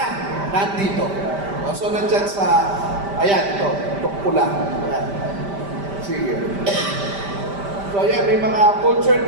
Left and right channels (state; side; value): late; left; 5.1 ms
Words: Nandito. O, so, nandyan sa, ayan, ito pula. Ayan. Sige. So, ayan, may mga culture